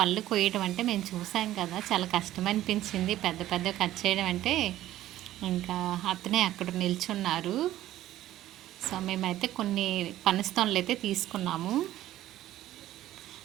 కొయ్యడం అంటే మేము చూసాం కదా, చాలా కష్టం అనిపించింది. పెద్ద పెద్ద కట్ చేయడం అంటే. ఇంకా అతనే అక్కడ నిల్చున్నారు. సో మేమైతే కొన్ని పనస్తోనలు అయితే తీసుకున్నాము.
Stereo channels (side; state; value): left; quieter; 14.0 dB